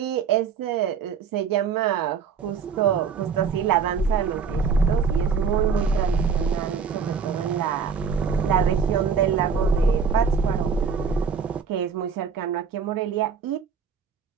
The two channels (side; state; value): left; quieter; 6.0 dB